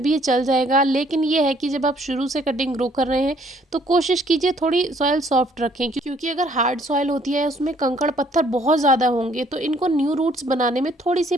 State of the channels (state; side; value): normal; both; correlation 0.62